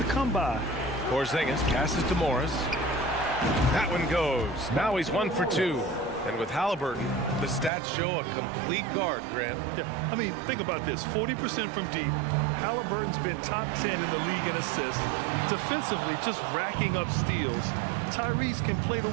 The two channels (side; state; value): left; drops out; at 7.7 s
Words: come by. Porzingis passes to Morris. That one goes. Now he's 1 for 2. And with Halliburton, the stats show a complete guard, Grant. Yeah, I mean, think about this. 40% from deep. Halliburton's been top 10 in the league in assists. Defensively, just racking up steals. Tyrese can play the